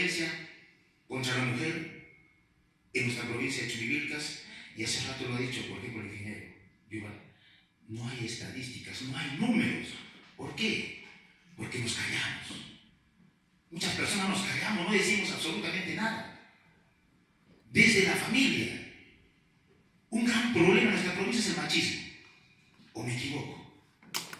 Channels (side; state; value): both; identical; correlation 1.00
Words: contra la mujer en nuestra provincia de Churivilcas y hace rato lo ha dicho, por ejemplo, el ingeniero Yuval, no hay estadísticas, no hay números. ¿Por qué? Porque nos callamos. Muchas personas nos callamos, no decimos absolutamente nada. Desde la familia, un gran problema en nuestra provincia es el machismo. ¿O me equivoco?